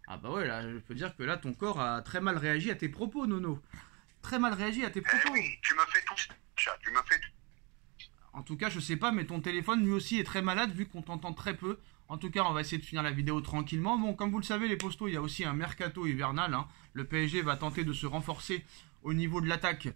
Ah bah ouais, là, je peux dire que là, ton corps a très mal réagi à tes propos, Nono. Très mal réagi à tes propos. Oui, tu me fais tout ça. Tu me fais tout. En tout cas, je sais pas, mais ton téléphone, lui aussi, est très malade, vu qu'on t'entend très peu. En tout cas, on va essayer de finir la vidéo tranquillement. Bon, comme vous le savez, les postos, il y a aussi un mercato hivernal. Hein. Le PSG va tenter de se renforcer au niveau de l'attaque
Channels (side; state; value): left; quieter; 30.2 dB